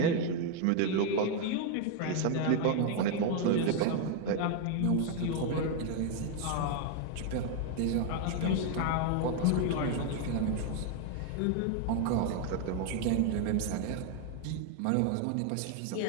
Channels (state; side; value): different; both; correlation 0.01